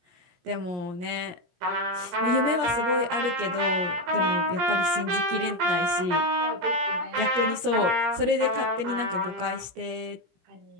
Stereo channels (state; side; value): late; left; 17 ms